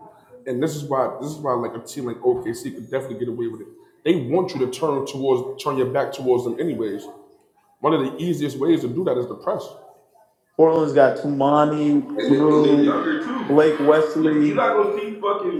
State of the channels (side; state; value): both; identical; correlation 1.00